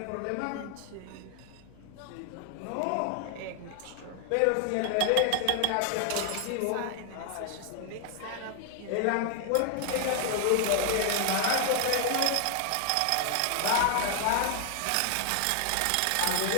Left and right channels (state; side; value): different; both; correlation 0.00